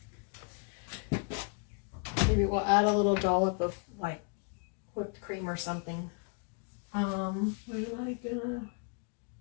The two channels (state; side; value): quieter; right; 38.3 dB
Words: Maybe we'll add a little dollop of like whipped cream or something. What am I gonna